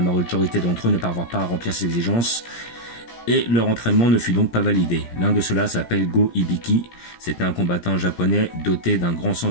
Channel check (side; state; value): right; late; 17 ms